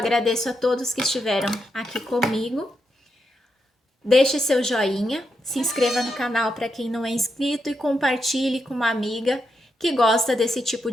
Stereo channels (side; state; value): both; normal; correlation 0.83